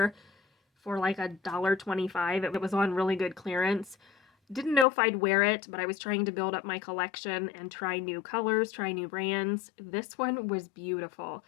for like $1.25. It was on really good clearance. Didn't know if I'd wear it, but I was trying to build up my collection and try new colors, try new brands. This one was beautiful.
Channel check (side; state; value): right; drops out; at 4.9 s